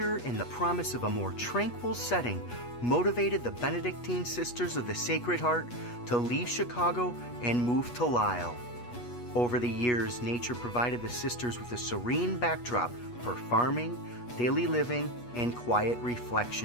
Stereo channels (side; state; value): right; late; 8.3 ms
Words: and the promise of a more tranquil setting motivated the Benedictine Sisters of the Sacred Heart to leave Chicago and move to Lisle. Over the years, nature provided the sisters with a serene backdrop for farming, daily living, and quiet